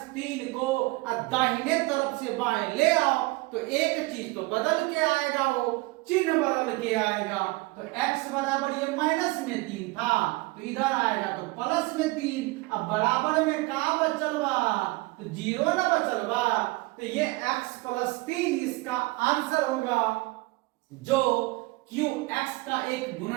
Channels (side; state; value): left; quieter; 23.2 dB